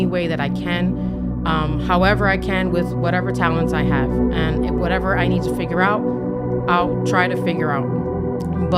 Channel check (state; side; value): identical; both; correlation 1.00